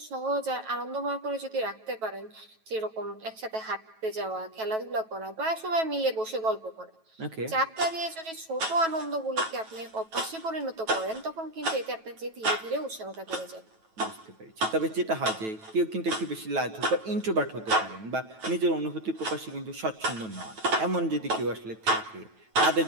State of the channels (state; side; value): late; left; 9.2 ms